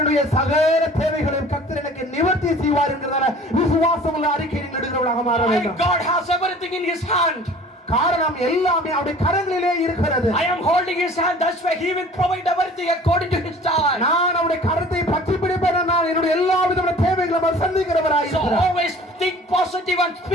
சகல தேவைகளையும் கர்த்தர் எனக்கு நிவர்த்தி செய்வார் என்கிறதால விசுவாசமுள்ள அறிக்கை நீங்கள் எடுக்கிறவர்களாக மாற My வேண்டும். God has everything in His hand. காரணம் எல்லாமே அவருடைய கரங்களிலே இருக்கிறது. I am holding His hand, that's why He will provide everything according to His time. நான் அவருடைய கரத்தை பற்றி பிடிப்பேன், நான் என்னுடைய எல்லா விதமான தேவைகளை சந்திக்கிறவராய் So இருக்கிறேன். always think positive and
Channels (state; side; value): normal; both; correlation 0.47